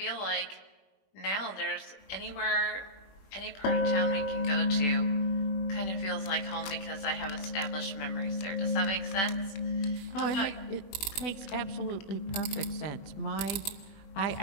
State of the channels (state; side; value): late; right; 21 ms